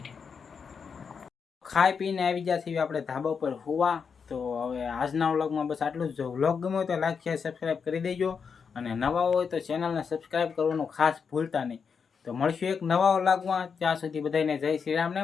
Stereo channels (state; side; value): quieter; right; 6.1 dB